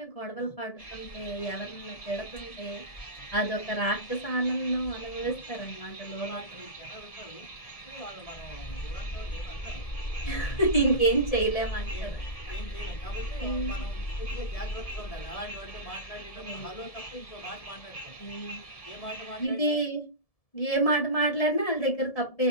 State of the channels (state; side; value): late; right; 1.7 ms